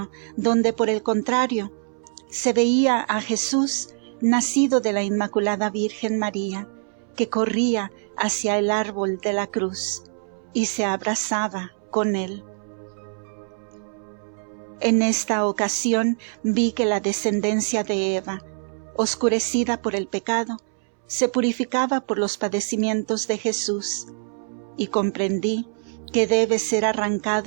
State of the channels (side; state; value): left; silent; 63 dB below the other